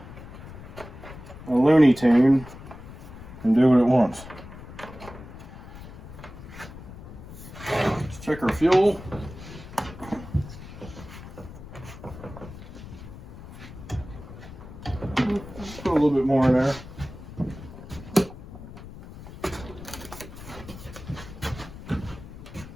Looney Tune and do what it wants. Let's check our fuel. Put a little bit more in there.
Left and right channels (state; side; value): noise; left; rumble, 14 dB below the sound